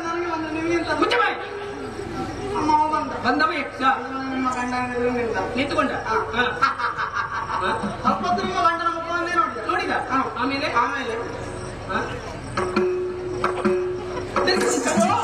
ನನಗೆ ಒಂದು ನಿಮಗಿಂತ ಮುಚ್ಚ ಬಾಯಿ. ಅಮ್ಮ ಬಂದ. ಬಂದವ ಯಕ್ಷ ನಿಮ್ಮ ಗಂಡ ನಿಂತುಕೊಂಡ. ಸ್ವಲ್ಪ ನಿಮ್ಮ ಗಂಡನ ಮುಖವನ್ನೇ ನೋಡಿದ. ನೋಡಿದ? ಆಮೇಲೆ ಆಮೇಲೆ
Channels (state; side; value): identical; both; correlation 1.00